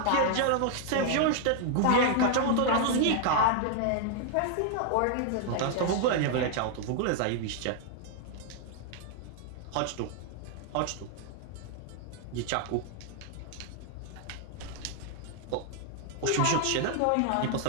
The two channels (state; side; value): different; both; correlation 0.00